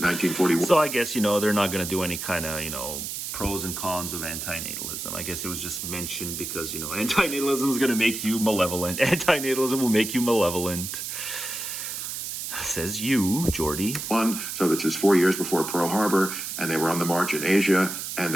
So I guess, they're not going to do any kind of, pros and cons of anti-natalism. I guess it was just mentioned because, anti-natalism is going to make you malevolent. Anti-natalism will make you malevolent. Says you, Jordy. So this is 4 years before Pearl Harbor, and they were on the march in Asia, and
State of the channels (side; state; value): right; noise; hiss, 6 dB below the sound